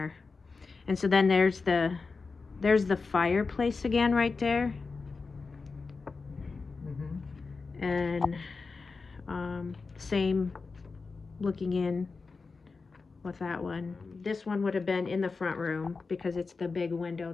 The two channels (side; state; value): right; quieter; 4.4 dB